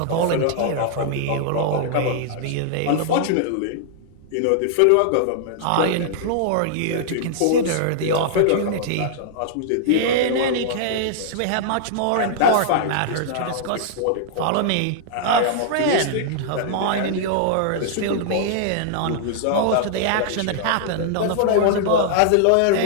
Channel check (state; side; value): different; both; correlation -0.01